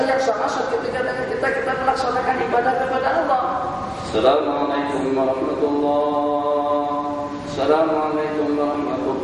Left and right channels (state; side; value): identical; both; correlation 1.00